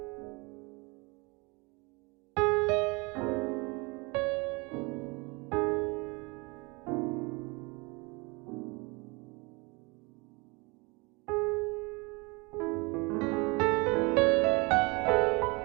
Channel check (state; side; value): quieter; left; 27.6 dB